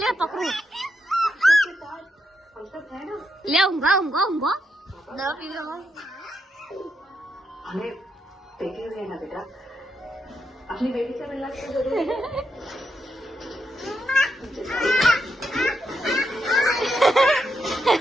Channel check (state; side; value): normal; both; correlation 0.81